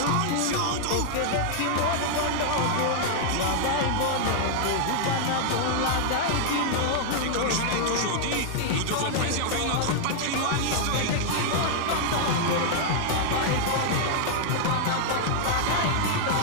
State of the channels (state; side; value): different; both; correlation -0.01